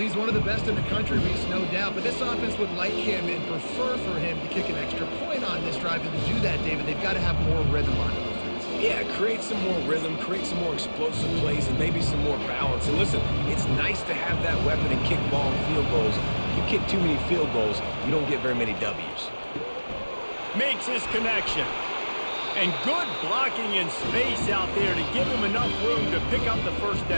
one of the best in the country, Reese, no doubt. But this offense would like him and prefer for him to kick an extra point on this drive. And to do that, David, they've got to have more rhythm on offense. Yeah, create some more rhythm, create some more explosive plays, and maybe some more balance. And listen, it's nice to have that weapon and kick long field goals. If you kick too many field goals, you don't get very many W's. Makes his connection. And good blocking in space out there to give him enough room to pick up the first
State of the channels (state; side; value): inverted; both; correlation -1.00